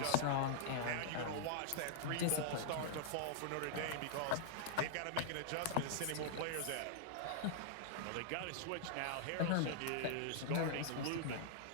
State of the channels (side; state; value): both; different; correlation -0.01